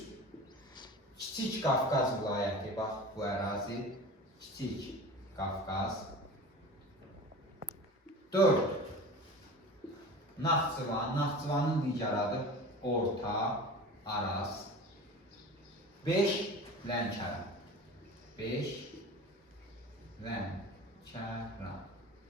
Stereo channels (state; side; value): normal; both; correlation 0.36